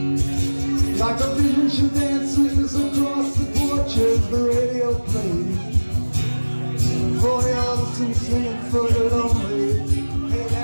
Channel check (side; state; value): both; inverted; correlation -1.00